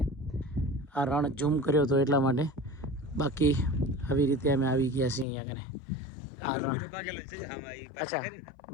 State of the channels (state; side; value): drops out; right; at 5.2 s